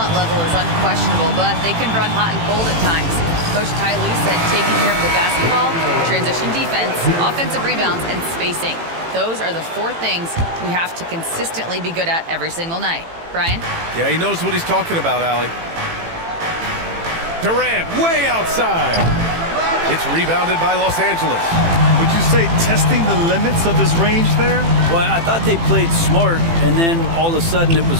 level is unquestionable, but they can run hot and cold at times. Coach Ty Lue said taking care of the basketball, transition defense, offensive rebounds, and spacing. Those are the 4 things we have to consistently be good at every single night. Brian? Yeah, he knows what he's talking about, Allie. Durant way outside. It's rebounded by Los Angeles. Would you say testing the limits of his range there? Well, I thought they played smart, and then all of a sudden it was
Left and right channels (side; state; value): left; late; 18 ms